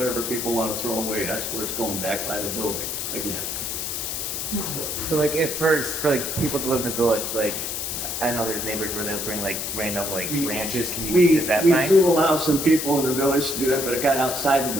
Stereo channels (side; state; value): left; noise; hiss, 3 dB below the sound